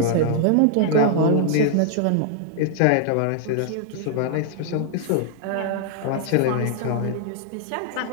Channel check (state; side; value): different; both; correlation 0.00